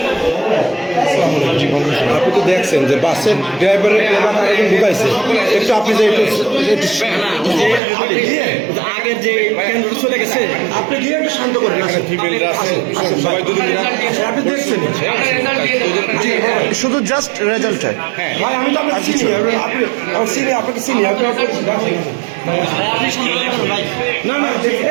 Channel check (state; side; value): drops out; left; at 7.8 s